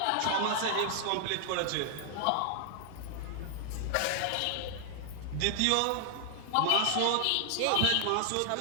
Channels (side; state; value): both; different; correlation 0.00